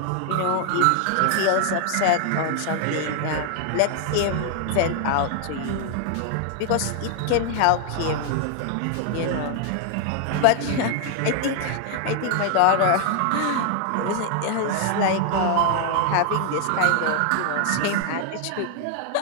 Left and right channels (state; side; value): different; both; correlation 0.00